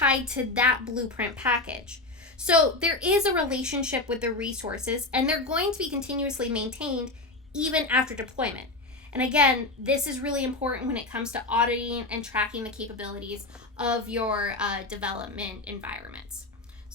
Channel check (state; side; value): quieter; right; 3.1 dB